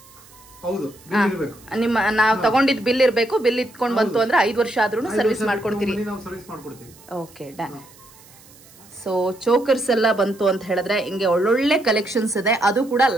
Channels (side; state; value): right; noise; hiss, 24 dB below the sound